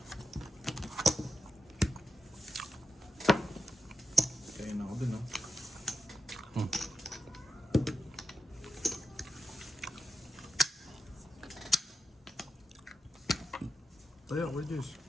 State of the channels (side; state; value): both; normal; correlation 0.88